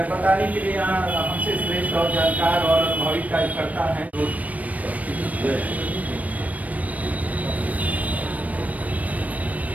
के लिए यहाँ हमसे श्रेष्ठ और जानकार और अनुभवी कार्यकर्ता हैं।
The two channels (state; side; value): late; left; 0.070 ms